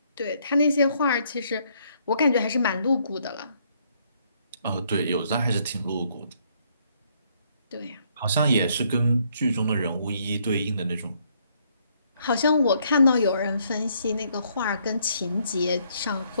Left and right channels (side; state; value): both; inverted; correlation -0.69